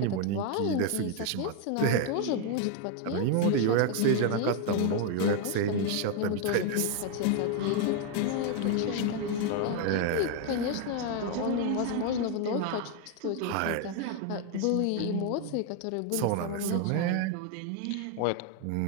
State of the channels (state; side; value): different; both; correlation 0.01